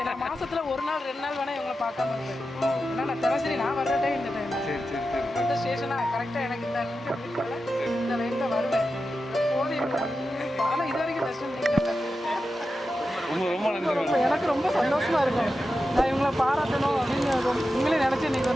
நான் மாதத்தில் 1 நாள் 2 நாள் வேணால் இவங்களை பார்க்காம இருப்பேன். ஏன்னா நான் தினசரி நான் வர்ற டைம் இந்த டைம் இந்த ஸ்டேஷனாக கரெக்டாக எனக்கு இந்த இந்த லைனில் வருவேன். எப்போதும் இவங்க ஆனால் இது வரைக்கும் பெஸ்ட் எனக்கு ரொம்ப சந்தோஷமாக இருக்கும். நான் இவங்களை பாராட்டணும் அப்படின்னு உங்களே நினச்சி இன்றைக்கி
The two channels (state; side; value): normal; both; correlation 0.91